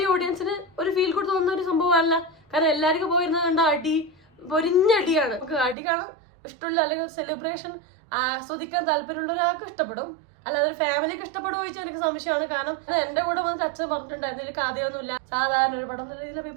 ഓഡിയൻസിന് ഒരു ഫീൽ ഗുഡ് തോന്നുന്ന ഒരു സംഭവമല്ല. കാരണം എല്ലാവർക്കും പോയിരുന്നത് കണ്ട അടി, പൊരിഞ്ഞടിയാണ്. നമുക്ക് അടി കാണാൻ ഇഷ്ടമുള്ള, അല്ലെങ്കിൽ ഒരു സെലിബ്രേഷൻ ആസ്വദിക്കാൻ താല്പര്യമുള്ള ഒരാൾക്ക് ഇഷ്ടപ്പെടും. അല്ലാതെ ഒരു ഫാമിലിക്ക് ഇഷ്ടപ്പെടുമോ ചോദിച്ചാൽ എനിക്ക് സംശയമാണ്. കാരണം എന്റെ കൂടെ വന്നിട്ട് അച്ഛൻ പറഞ്ഞിട്ടുണ്ടായിരുന്നു ഇതിൽ കഥയൊന്നുമില്ല, സാധാരണ ഒരു പടം എന്നുള്ള രീതിയിൽ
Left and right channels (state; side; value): drops out; left; at 5.8 s